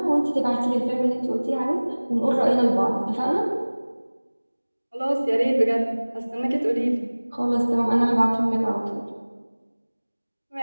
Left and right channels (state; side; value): inverted; both; correlation -1.00